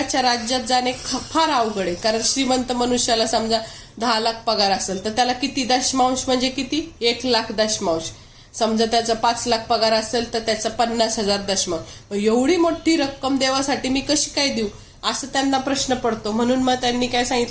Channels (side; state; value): both; identical; correlation 1.00